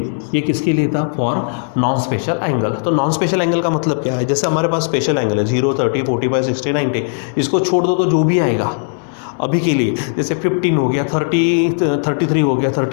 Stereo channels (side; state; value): right; silent; digital silence